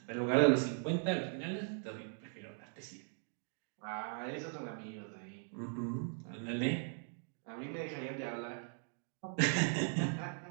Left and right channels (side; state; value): left; silent; 52 dB below the other